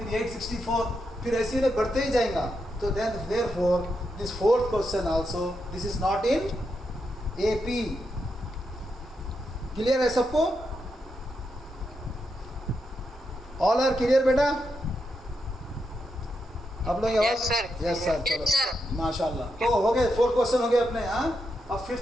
864, फिर ऐसे ही बढ़ते ही जाएगा। तो then therefore this fourth question also, this is not in AP. Clear है सबको? ऑल आर क्लियर बेटा? आप लोग यस सर, चलो माशाल्लाह। तो हो गए 4 क्वेश्चन हो गए अपने। हाँ, अब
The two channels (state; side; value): normal; both; correlation 0.84